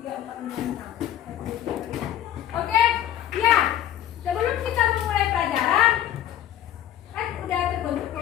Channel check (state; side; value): quieter; right; 11.2 dB